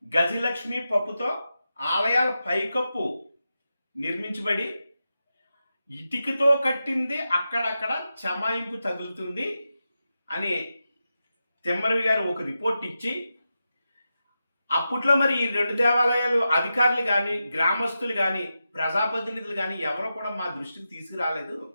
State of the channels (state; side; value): inverted; both; correlation -0.90